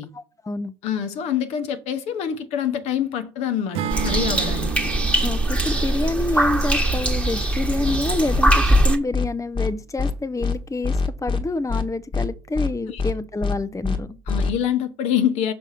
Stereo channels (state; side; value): normal; both; correlation 0.67